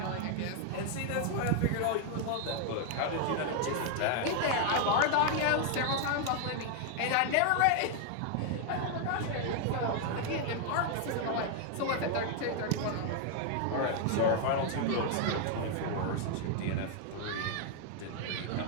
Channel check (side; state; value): both; different; correlation 0.00